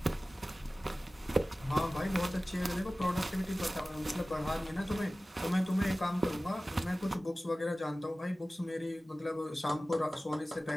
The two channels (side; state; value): both; normal; correlation 0.97